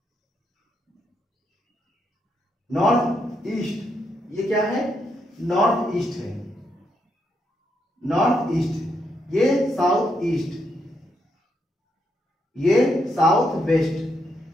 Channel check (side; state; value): both; normal; correlation 0.79